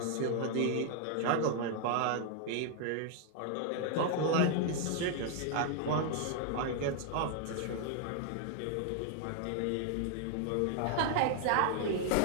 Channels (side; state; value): both; different; correlation 0.00